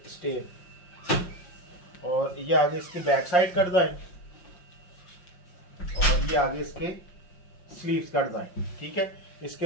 स्टेन, और ये आगे इसकी बैक साइड का डिज़ाइन, और ये आगे इसके स्लीव्स का डिज़ाइन। ठीक है,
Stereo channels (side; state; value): right; late; 5.6 ms